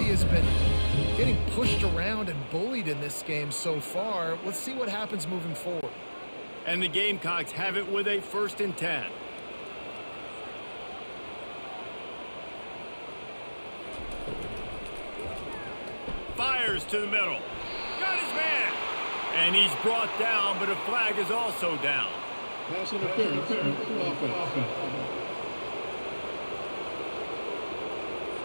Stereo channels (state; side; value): inverted; both; correlation -1.00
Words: has been getting pushed around and bullied in this game so far. Let's see what happens moving forward. And the Gamecocks have it with a 1st and 10. Fires to the middle. Got his man. And he's brought down, but a flag is also down. Pass interference. Offense.